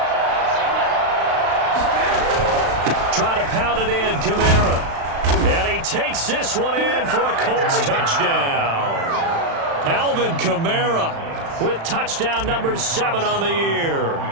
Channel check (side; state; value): left; late; 36 ms